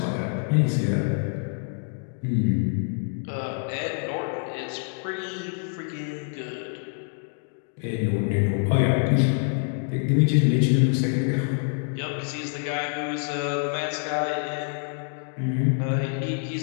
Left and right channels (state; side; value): silent; right; 56 dB below the other